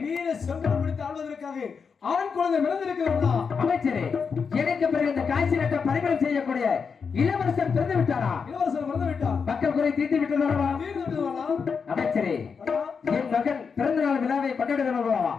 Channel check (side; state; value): right; quieter; 5.8 dB